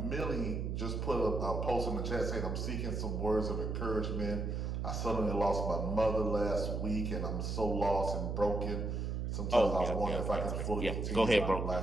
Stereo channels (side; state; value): right; noise; hum, 2 dB below the sound